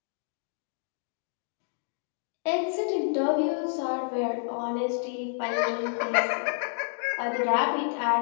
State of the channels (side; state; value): right; silent; digital silence